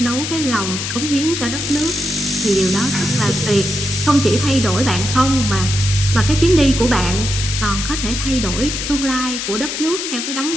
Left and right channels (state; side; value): noise; left; hiss, 4 dB below the sound